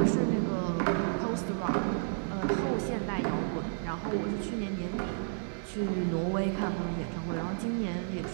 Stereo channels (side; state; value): left; silent; digital silence